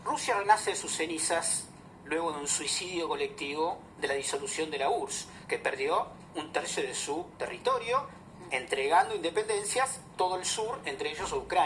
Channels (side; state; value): both; identical; correlation 1.00